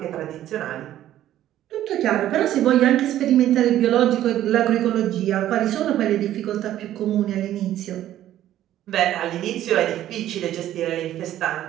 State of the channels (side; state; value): left; quieter; 12.6 dB